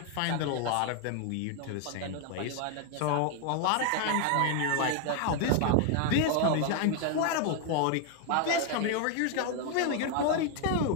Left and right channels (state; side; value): different; both; correlation 0.00